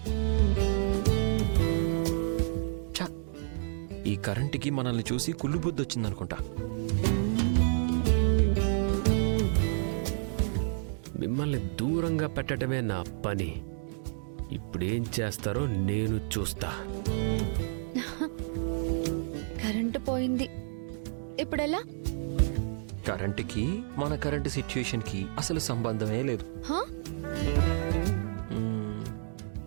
ఈ కరెంటుకి మనల్ని చూసి కుళ్ళు బుద్ధి వచ్చిందనుకుంటా. మిమ్మల్ని దూరంగా పెట్టడమే నా పని. ఇప్పుడేం చేస్తారో నేను చూస్తా. కరెంటు పోయింది, ఇప్పుడెలా? కరెంటుకి మన కరెంటు సిచ్యుయేషన్కి అసలు సంబంధమే లేదు. హా?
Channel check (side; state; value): left; silent; digital silence